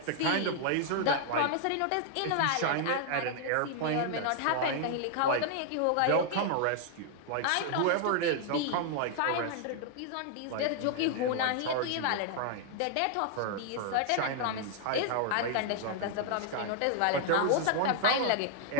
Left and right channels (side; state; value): both; different; correlation 0.00